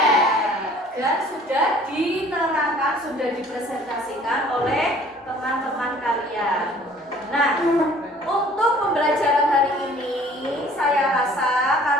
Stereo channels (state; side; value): normal; both; correlation 0.53